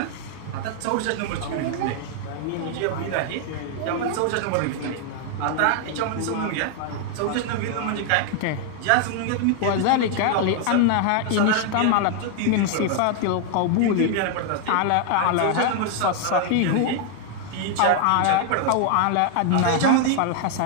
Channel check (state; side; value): different; both; correlation 0.00